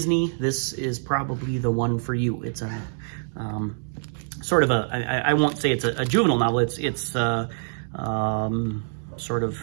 this is probably the one for you. It's a sort of a, I won't say it's a juvenile novel. It's sort of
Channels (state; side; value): silent; left; digital silence